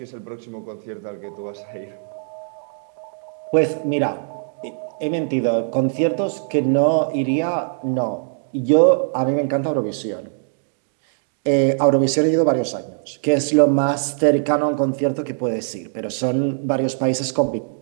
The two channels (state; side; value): silent; left; digital silence